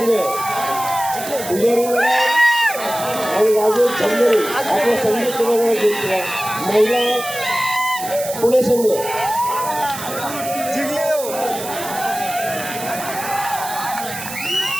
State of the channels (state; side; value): noise; right; hiss, 10 dB below the sound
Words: पुजारी आणि राजेश झंगरे आपला संघ क्रीडांगण जिंकला. महिला पुणे संघ